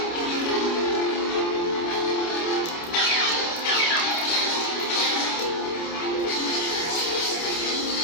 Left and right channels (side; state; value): right; late; 29 ms